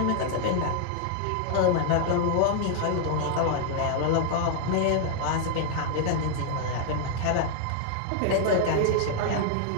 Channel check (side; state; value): both; different; correlation 0.00